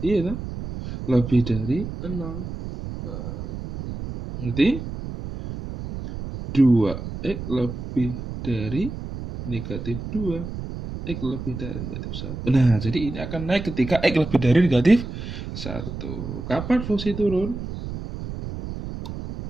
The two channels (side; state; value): right; noise; rumble, 8 dB below the sound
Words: kan? Lebih dari 0. Berarti 2x lebih dari negatif 2, x lebih dari negatif 1. Nah, jadi ini akan naik ketika x lebih dari negatif 1. Kapan fungsi turun?